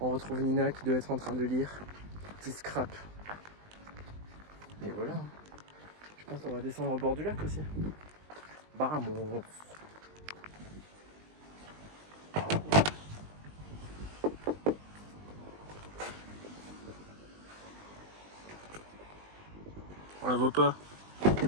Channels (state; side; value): late; left; 20 ms